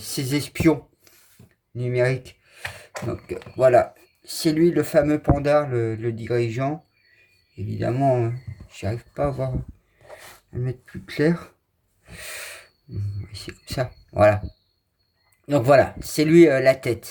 espions numériques. Donc voilà, c'est lui le fameux panda, le dirigeant. Évidemment, j'arrive pas à voir, à le mettre plus clair. C'est comme ça. Voilà. Donc voilà, c'est lui la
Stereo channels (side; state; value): both; identical; correlation 1.00